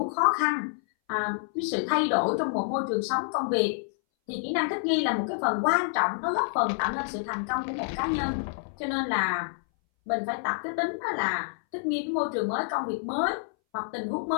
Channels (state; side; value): silent; right; 59 dB below the other